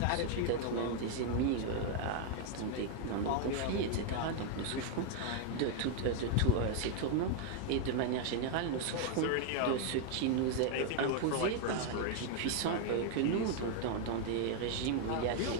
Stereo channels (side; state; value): both; different; correlation 0.00